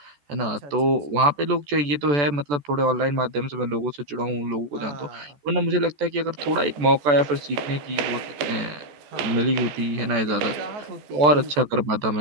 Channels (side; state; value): left; late; 14 ms